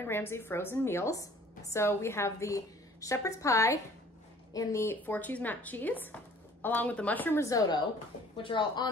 Ramsay frozen meals. So we have the shepherd's pie and the 4-cheese mac cheese, along with the mushroom risotto, which are all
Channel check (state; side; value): normal; both; correlation 0.53